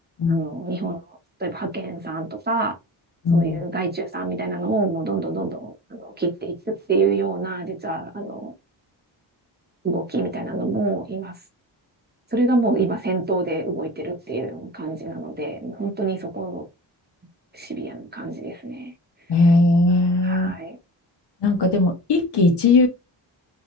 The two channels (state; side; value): normal; both; correlation 0.33